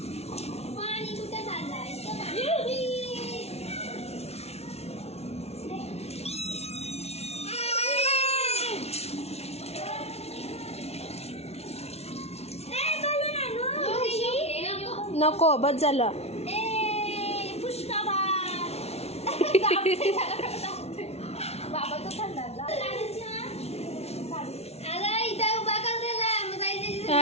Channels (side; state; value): right; late; 0.31 ms